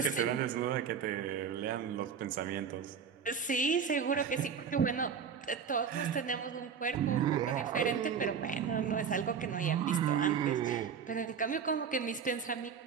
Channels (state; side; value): quieter; left; 6.8 dB